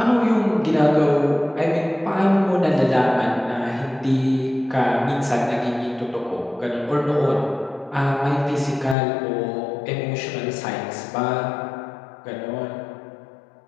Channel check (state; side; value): drops out; right; at 9.0 s